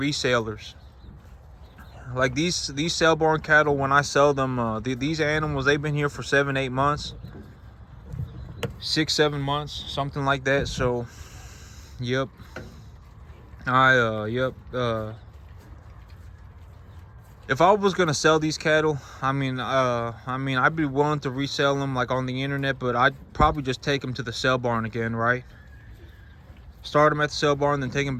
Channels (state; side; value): identical; both; correlation 1.00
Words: Like these sale barn cattle, when I sell them, these animals, they've been here for 7-8 months, 6-7 months, something like that. So yep, if I was gonna sell these cattle, I mean I'd be willing to resell them like on the internet, but I'd probably just take them to the sale barn again, right? Start them at the sale barn, then take them